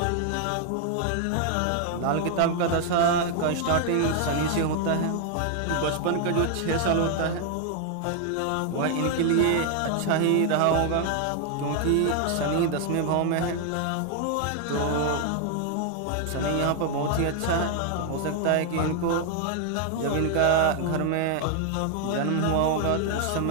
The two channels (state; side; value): different; both; correlation 0.00